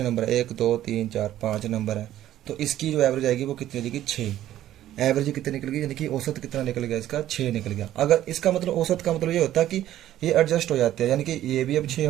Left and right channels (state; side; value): quieter; left; 12.9 dB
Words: नंबर है, 1 2 3 4 5 नंबर है, तो इसकी जो एवरेज आएगी वो कितनी आएगी, 6। एवरेज कितनी निकल गई, यानी कि औसत कितना निकल गया इसका, 6 निकल गया। अगर इसका मतलब औसत का मतलब ये होता है कि ये एडजस्ट हो जाते हैं, यानी कि ये भी अब 6